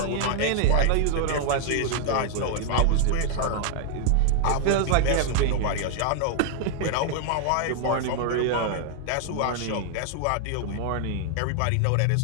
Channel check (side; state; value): both; different; correlation 0.00